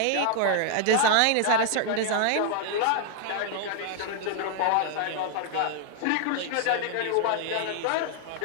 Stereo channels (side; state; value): both; different; correlation 0.00